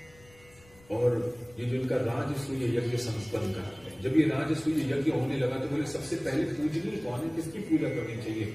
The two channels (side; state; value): left; noise; rumble, 26 dB below the sound